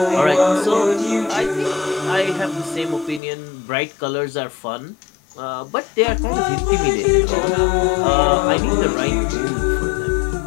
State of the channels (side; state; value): right; drops out; at 3.2 s